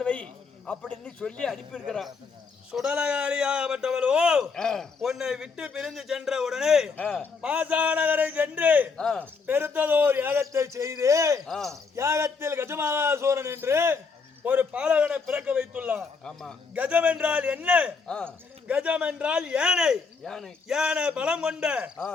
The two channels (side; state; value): right; quieter; 4.9 dB